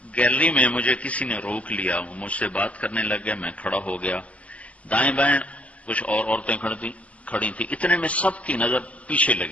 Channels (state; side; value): late; right; 0.065 ms